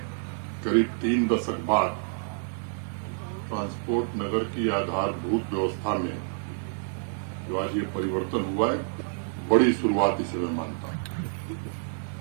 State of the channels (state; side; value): silent; left; digital silence